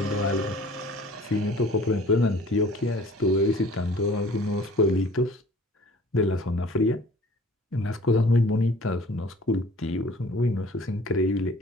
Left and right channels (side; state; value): both; normal; correlation 0.50